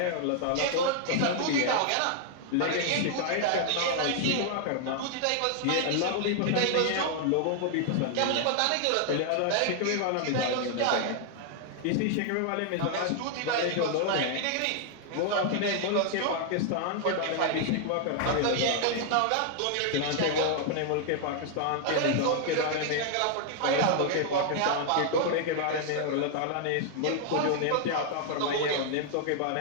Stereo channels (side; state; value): both; different; correlation 0.00